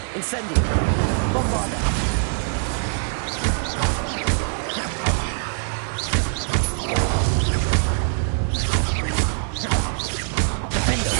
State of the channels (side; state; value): left; silent; 64 dB below the other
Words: Incendio! Bombarda! Defendo!